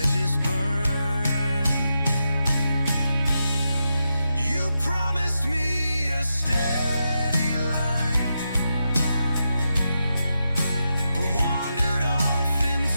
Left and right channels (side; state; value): both; inverted; correlation -0.87